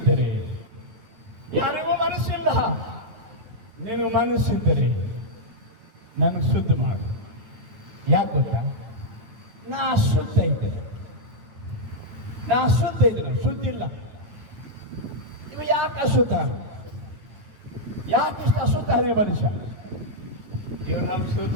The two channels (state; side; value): late; left; 8.8 ms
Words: ಯಾರಿಗೂ ಮನಸ್ಸಿಲ್ಲ, ನಿನಗೆ ಮನಸ್ಸಿದ್ದರೆ ನನಗೆ ಶುದ್ಧ ಮಾಡು. ಯಾಕೆ ಗೊತ್ತಾ? ನಾ ಅಶುದ್ಧ ಇದ್ದೇನೆ, ಶುದ್ಧಿಲ್ಲ. ಇವ ಯಾಕೆ ಅಶುದ್ಧ? ಯಾಕೆ ಅಶುದ್ಧನೇ ಮನುಷ್ಯ? ಇವರು ನಮ್ಮ